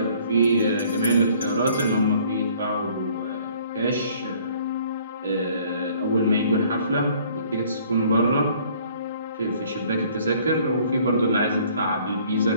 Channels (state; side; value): inverted; both; correlation -0.58